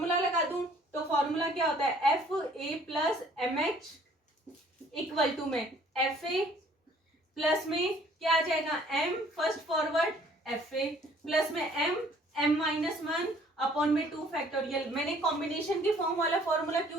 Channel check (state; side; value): normal; both; correlation 0.57